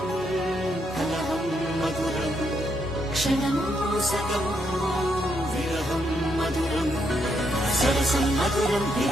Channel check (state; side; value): normal; both; correlation 0.77